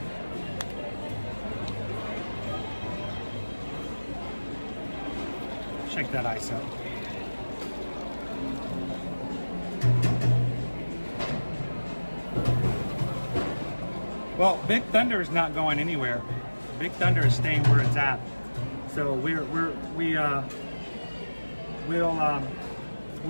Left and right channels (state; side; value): inverted; both; correlation -1.00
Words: Shake that ice up. Well, Big Thunder is not going anywhere. Big Thunder is staying where it's at. So we'll